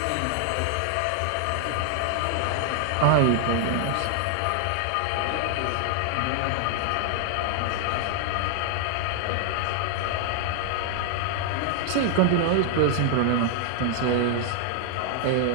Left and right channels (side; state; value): both; different; correlation 0.00